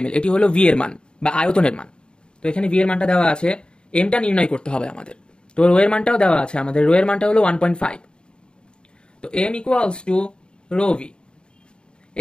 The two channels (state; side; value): late; right; 0.051 ms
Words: ml, এটি হলো ভি এর মান বা আয়তনের মান। তো এখানে ভি এর মানটা দেওয়া আছে, এমটা নির্ণয় করতে হবে আমাদের। তো রো এর মানটাও দেওয়া আছে আমাদের, রো এর মানটা হলো 1.5। তো M equals to rho V.